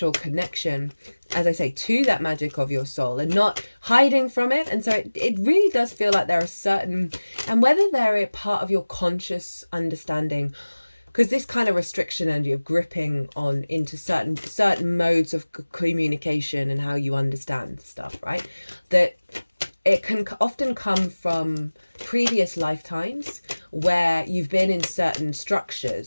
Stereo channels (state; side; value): inverted; both; correlation -1.00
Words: connection, as I say, to that magic of your soul and not hiding from it. And so it really does feel like there are certain, and whether they're a part of your conscious understanding, because this kind of restriction energy of gripping on into certain modes of communication and how you understand stuff, right? That it can often come from previous lifetimes where you've been in certain structures,